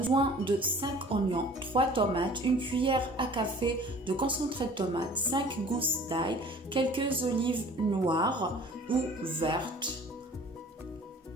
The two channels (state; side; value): normal; both; correlation 0.48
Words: de 5 oignons, 3 tomates, une cuillère à café de concentré de tomate, 5 gousses d'ail, quelques olives noires ou vertes,